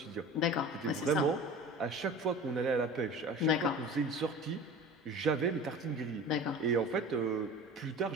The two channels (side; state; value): both; normal; correlation 0.37